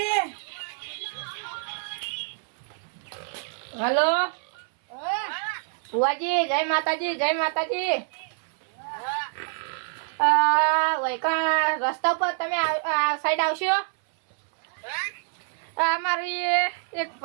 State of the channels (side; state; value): left; silent; 57 dB below the other